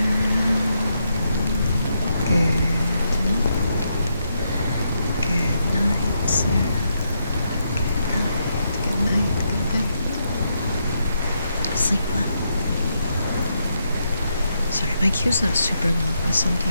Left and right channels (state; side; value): inverted; both; correlation -0.80